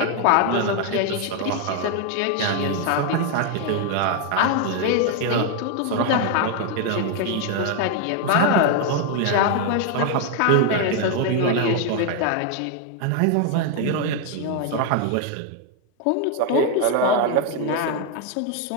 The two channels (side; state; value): both; different; correlation 0.01